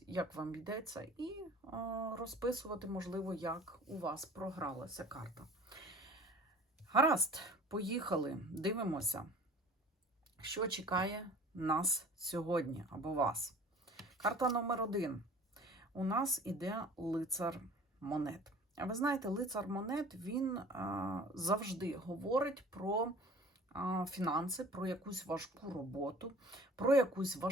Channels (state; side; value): normal; both; correlation 0.46